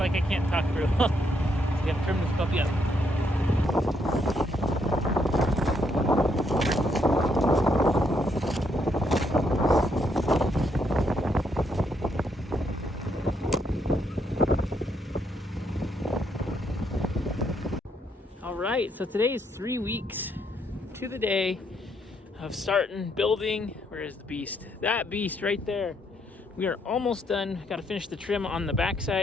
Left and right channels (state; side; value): normal; both; correlation 0.74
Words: I can't talk through. So we have to trim this puppy up. Alright, so today is 3 weeks to the day of starting building. Where is the beast? That beast right there. We are almost done. Got to finish the trim on the